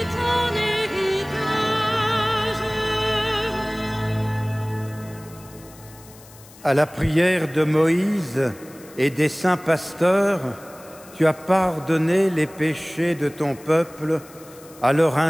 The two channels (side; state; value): left; noise; hiss, 22 dB below the sound